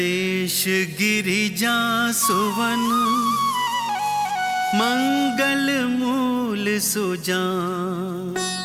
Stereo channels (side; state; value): both; identical; correlation 1.00